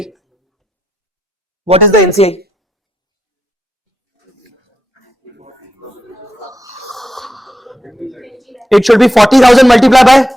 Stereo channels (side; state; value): both; normal; correlation 0.84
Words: What is the NCI? It should be 40,000 multiplied by